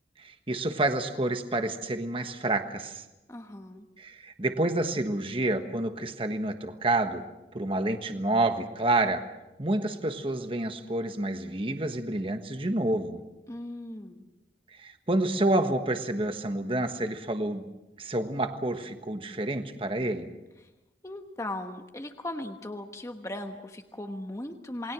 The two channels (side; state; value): both; normal; correlation 0.47